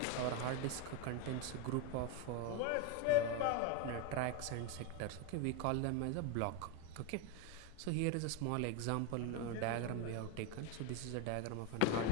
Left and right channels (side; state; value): both; different; correlation 0.02